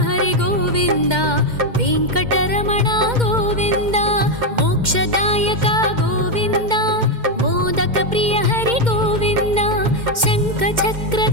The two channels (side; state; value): left; late; 2.1 ms